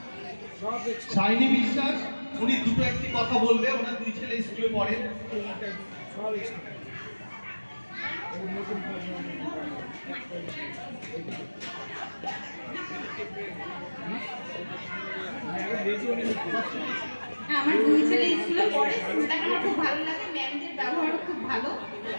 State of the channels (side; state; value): both; inverted; correlation -1.00